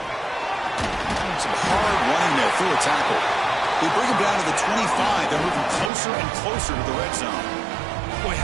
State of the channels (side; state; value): left; drops out; at 5.9 s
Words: Some hard running there through a tackle. They bring him down to the 25. They're moving closer and closer to the red zone. Boy,